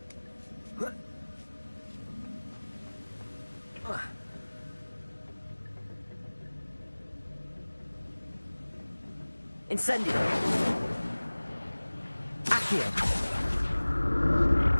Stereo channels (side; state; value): both; inverted; correlation -1.00